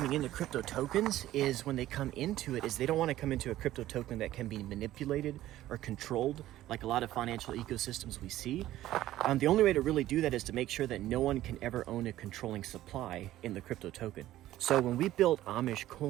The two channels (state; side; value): quieter; left; 14.4 dB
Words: into crypto tokens is when they come into it is they don't want to come into a crypto token that can be manipulated or controlled like a lot of financial ecosystems we see. The only way to really do that is to make sure that no one can ever own a controlling supply in the crypto token. So when we built Amish